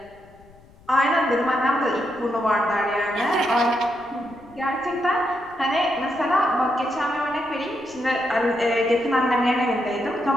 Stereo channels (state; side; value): noise; left; rumble, 26 dB below the sound